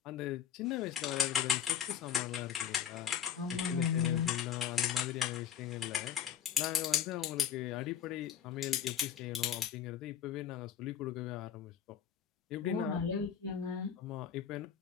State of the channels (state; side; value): quieter; right; 8.9 dB